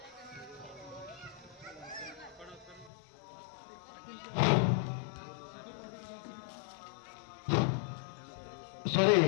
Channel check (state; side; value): drops out; right; at 2.9 s